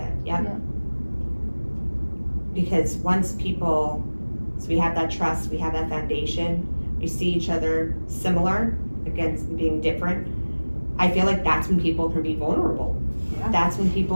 yeah. Because once people, so we have that trust, we have that foundation, we see each other similar against being different, I feel like that's when people can be vulnerable. Yeah. That's when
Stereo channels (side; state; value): both; inverted; correlation -1.00